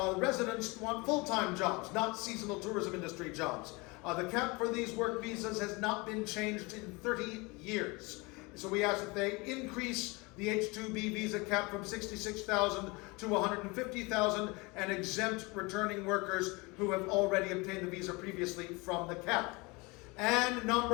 residents want full-time jobs, not seasonal tourism industry jobs. The cap for these work visas has not been changed in 30 years. So we asked that they increase the H-2B visa cap from 66,000 to 150,000 and exempt returning workers who have already obtained the visa previously from the cap. And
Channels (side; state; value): right; quieter; 26.0 dB